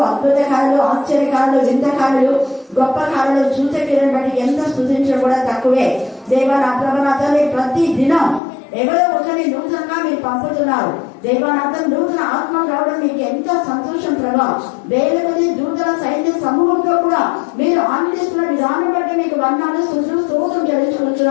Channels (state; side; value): drops out; right; at 8.4 s